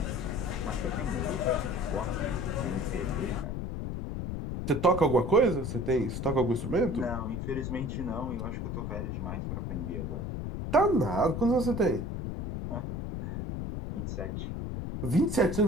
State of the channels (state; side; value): noise; left; rumble, 4 dB below the sound